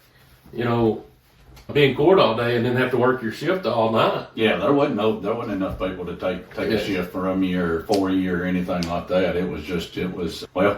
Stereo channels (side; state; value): both; identical; correlation 1.00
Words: be in court all day and then have to work your shift all night. Yeah, there wasn't enough people to take a shift from you or for you or anything like that. It was